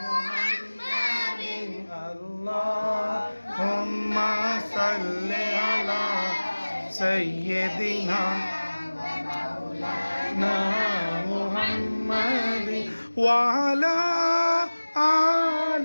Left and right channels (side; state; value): both; inverted; correlation -1.00